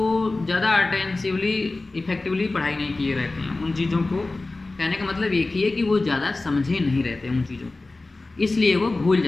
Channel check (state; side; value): quieter; right; 3.2 dB